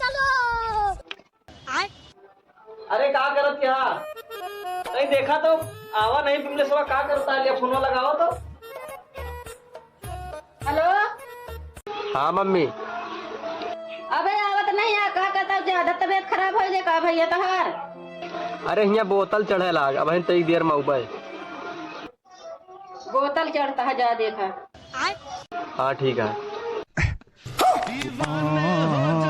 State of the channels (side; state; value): both; identical; correlation 1.00